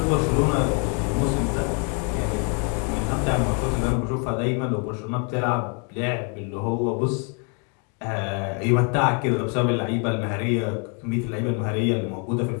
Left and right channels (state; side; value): quieter; right; 37.6 dB